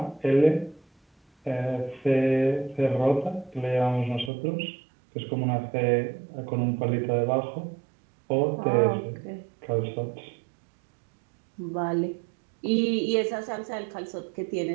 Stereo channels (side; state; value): left; drops out; at 4.3 s